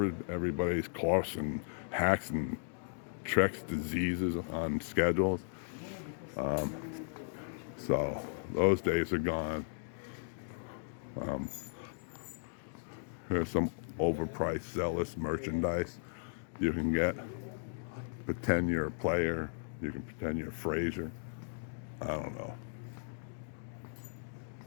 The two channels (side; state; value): right; silent; digital silence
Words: everybody's coughs and hacks and tricks diseases on schedules. So those days are gone. Here's some overpriced, zealous merchandise you can get. Pretend you're a player. You can pretend you're Frazier. I don't know.